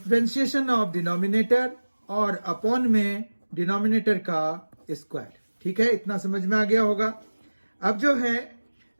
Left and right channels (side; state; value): both; inverted; correlation -1.00